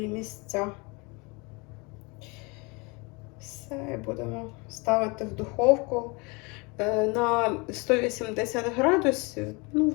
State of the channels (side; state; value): right; quieter; 28.3 dB